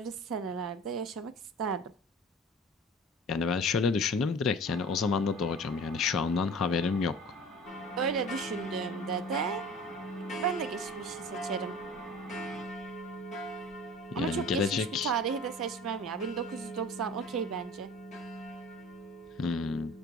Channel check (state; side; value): normal; both; correlation 0.41